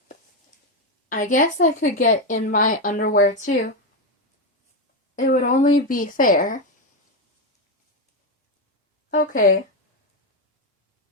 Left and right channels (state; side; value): normal; both; correlation 0.08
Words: underwear too. It would only be fair. Okay.